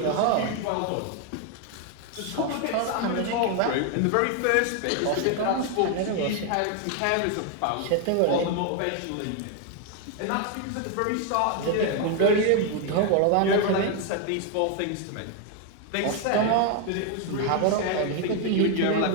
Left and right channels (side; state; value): both; different; correlation 0.01